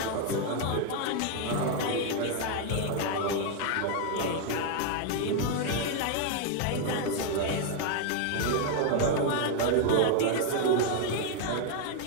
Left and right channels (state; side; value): different; both; correlation 0.01